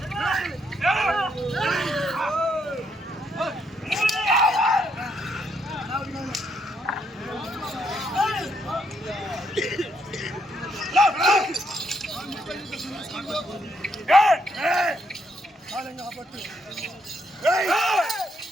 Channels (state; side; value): normal; both; correlation 0.75